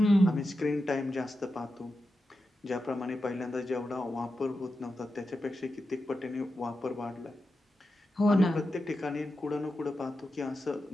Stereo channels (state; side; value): normal; both; correlation 0.90